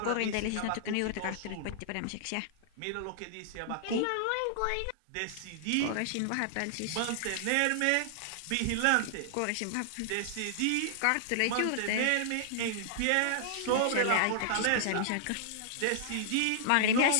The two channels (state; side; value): different; both; correlation -0.01